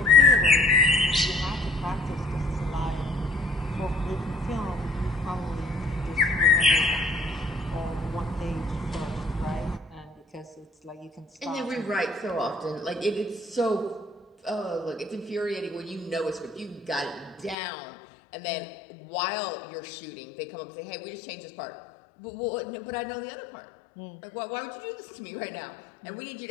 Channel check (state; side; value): drops out; right; at 17.6 s